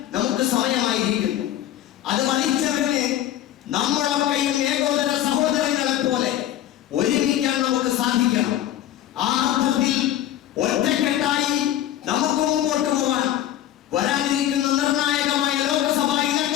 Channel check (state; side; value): quieter; right; 12.2 dB